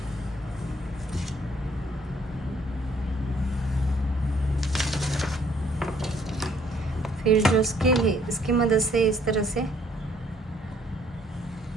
फिर जो स्केल है इसकी मदद से इस तरह से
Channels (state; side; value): normal; both; correlation 0.64